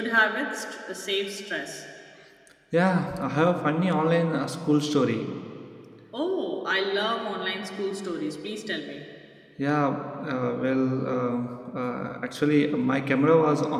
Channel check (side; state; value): both; identical; correlation 1.00